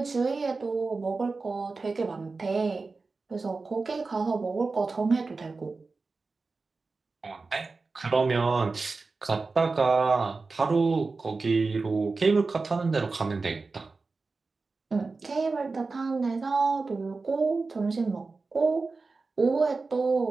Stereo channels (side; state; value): left; quieter; 4.0 dB